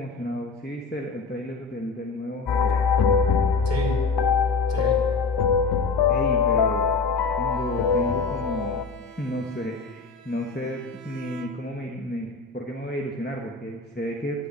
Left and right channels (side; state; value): right; quieter; 4.4 dB